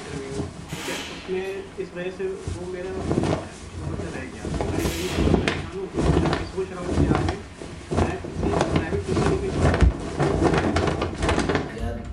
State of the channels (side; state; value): both; identical; correlation 1.00